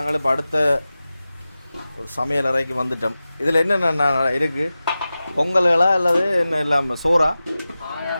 இப்போ அடுத்த சமையல் அறைக்கு வந்துட்டோம். இதில் என்னென்ன இருக்குது? பொங்கல்களா அல்லது என்ன இல்லாமல் சோறா?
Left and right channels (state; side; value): inverted; both; correlation -0.95